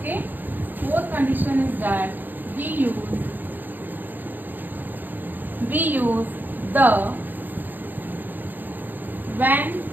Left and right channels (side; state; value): left; late; 0.088 ms